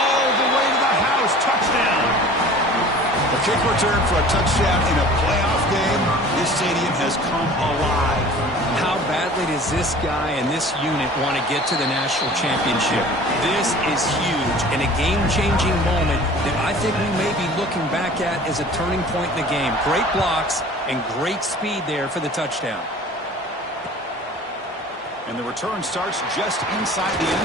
the way to the house. Touchdown. A kick return for a touchdown in a playoff game. This stadium has come alive. How badly does this guy and this unit want to get to the national championship? This is huge and a game-changing moment that I think we may be looking back at as a turning point in the game. Great blocks and great speed there for the touchdown. And the return starts just inside the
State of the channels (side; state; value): both; normal; correlation 0.44